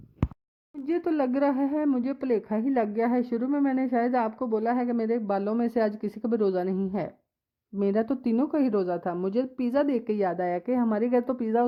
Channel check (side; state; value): both; identical; correlation 1.00